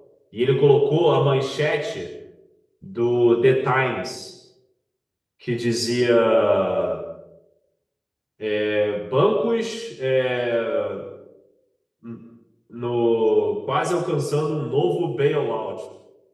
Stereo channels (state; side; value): identical; both; correlation 1.00